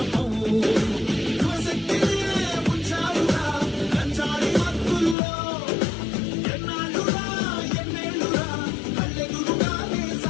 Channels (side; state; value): right; drops out; at 5.2 s